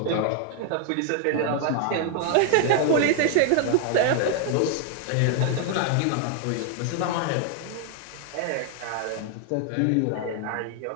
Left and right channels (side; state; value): both; different; correlation 0.00